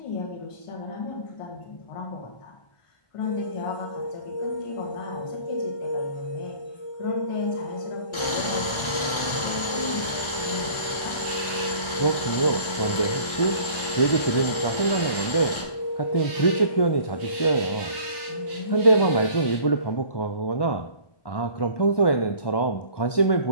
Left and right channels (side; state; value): right; late; 1.4 ms